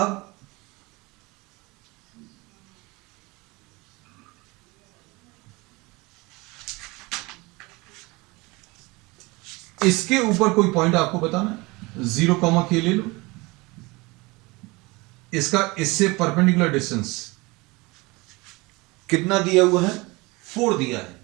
इसके ऊपर कोई पॉइंट आपको बताना, 0 कॉमा के ले लो, इसका इससे परपेंडिकुलर डिस्टेंस कितना दिया हुआ है? 4 दिया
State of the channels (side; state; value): left; quieter; 24.1 dB